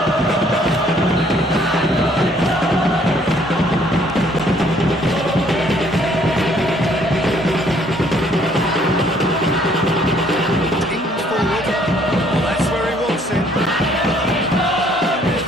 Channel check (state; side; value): normal; both; correlation 0.63